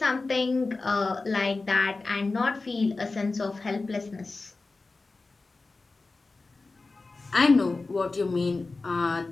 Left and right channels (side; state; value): right; quieter; 3.6 dB